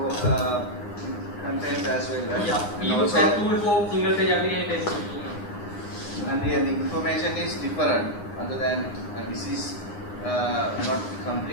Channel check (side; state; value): right; late; 9.7 ms